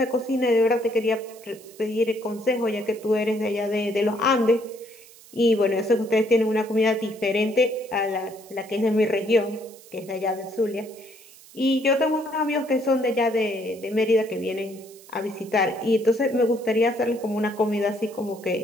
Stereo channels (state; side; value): noise; right; hiss, 22 dB below the sound